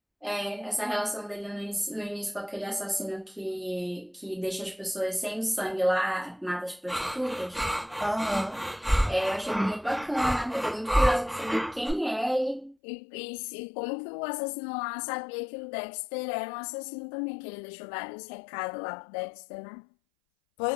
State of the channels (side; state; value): right; drops out; at 12.8 s